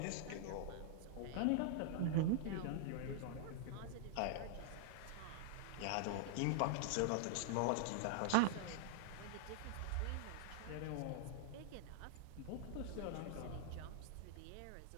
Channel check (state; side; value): different; both; correlation 0.00